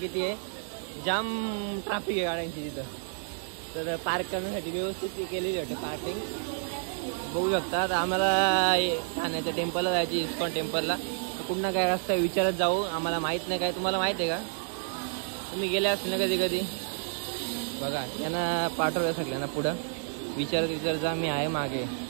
आहे, जाम ट्रॅफिक आहे गाड्यांची तिथं. तर पार्क करण्यासाठी व्यवस्थित केलेली वाटते पार्किंग बघू शकता. तर आम्हाला ठाण्याच्या टेम्पलला जायची, इस्कॉन टेम्पलला. तर कुठं काय रस्ता विचारत जाऊ, आम्हाला माहीत नाही. काय तुम्हाला माहीत आहे का? तुम्ही गेले असेल ना कधी कधी बघा. यांना पाठवलं सगळ्यांना पुढं विचारत जा, मी आहे मागे.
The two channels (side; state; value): left; silent; digital silence